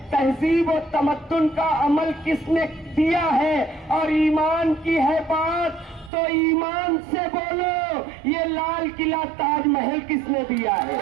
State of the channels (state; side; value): drops out; left; at 6.1 s